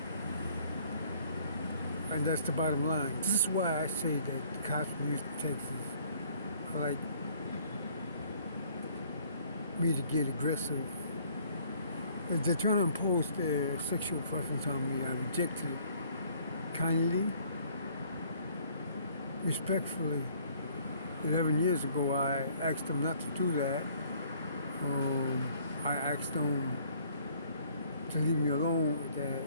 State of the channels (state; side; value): inverted; both; correlation -0.59